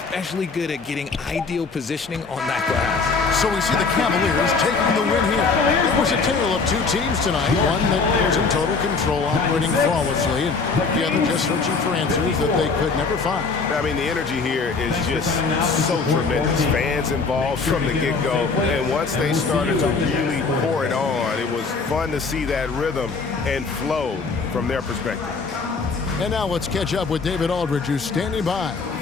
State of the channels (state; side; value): quieter; right; 4.5 dB